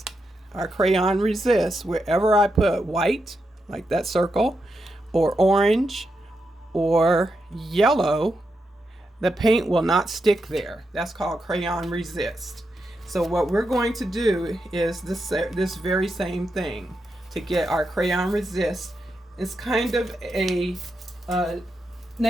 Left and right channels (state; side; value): normal; both; correlation 0.85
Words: our crayon resists. Wherever I put white, like that circle, or orange, or yellow, the paint will not stick there. That's called crayon resist. So what we're going to do is this very same thing to get our crayon resist. It's kind of a